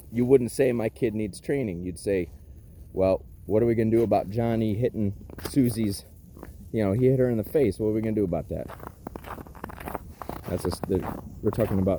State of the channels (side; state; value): both; identical; correlation 1.00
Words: You wouldn't say my kid needs training. You'd say, well, what are we going to do about Johnny hitting Susie's, he hit her in the face. What are we going to do about that? We're talking